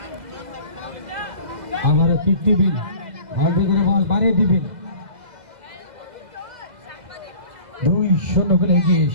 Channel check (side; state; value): left; late; 2.0 ms